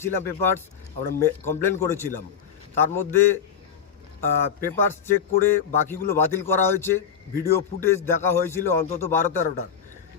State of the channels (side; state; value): right; quieter; 7.5 dB